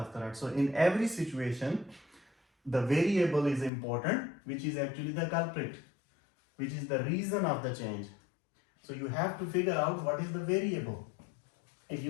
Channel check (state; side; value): drops out; right; at 3.7 s